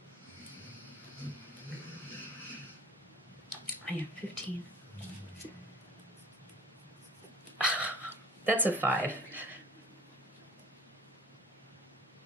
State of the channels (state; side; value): normal; both; correlation 0.48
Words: I have 15. That's a 5.